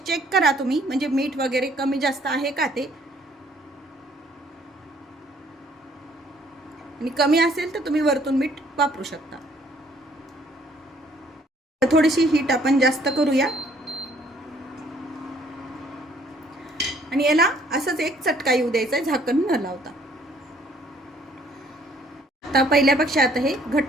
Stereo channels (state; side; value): normal; both; correlation 0.62